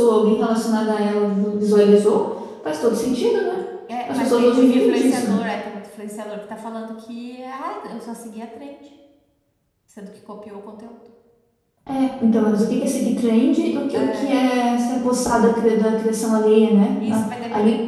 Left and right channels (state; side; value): identical; both; correlation 1.00